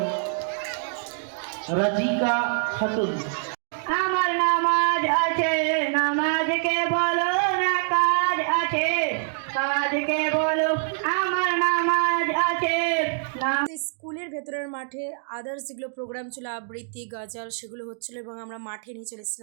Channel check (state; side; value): silent; left; digital silence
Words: Rajika Khatun. আমার নামাজ আছে, নামাজকে বলো না কাজ আছে, কাজকে বলো আমার নামাজ আছে। স্কুলের ভেতরের মাঠে আদার্স যেগুলো প্রোগ্রাম ছিল, আবৃত্তি গজল, সেগুলো হচ্ছিলো এবং আমরা মাঠে নিয়ে চলে